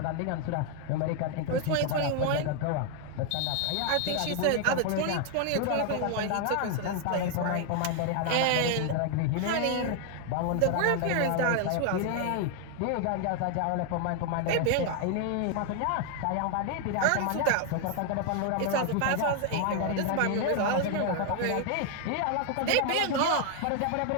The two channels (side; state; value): both; different; correlation 0.00